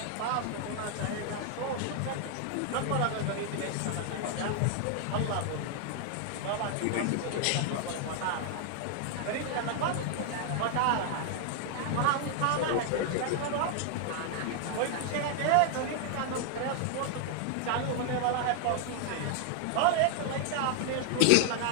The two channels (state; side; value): different; both; correlation 0.00